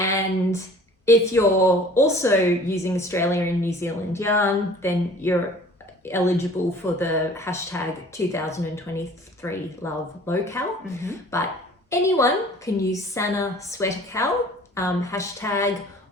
if you're also using Australia and New Zealand yarn, then you're eligible for the hashtag 2023 Love Local. But anyone can use Sanna Sweater KAL hashtag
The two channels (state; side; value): normal; both; correlation 0.49